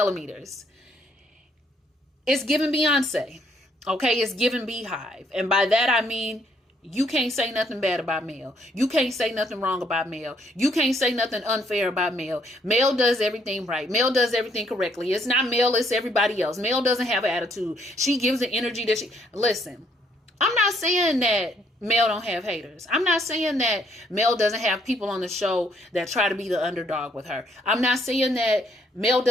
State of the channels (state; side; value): normal; both; correlation 0.69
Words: It's giving Beyonce. Okay, it's giving Beehive. And by that, I mean, you can't say nothing bad about Mel. You can't say nothing wrong about Mel. You can't say nothing unfair about Mel. Mel does everything right. Mel does everything correctly. It's not Mel, it's everybody else. Mel doesn't have an attitude. She gives the energy that listen, I'm not saying that Mel don't have haters. I'm not saying that Mel doesn't have people on the show that try to be the underdog with her. I'm not saying that Mel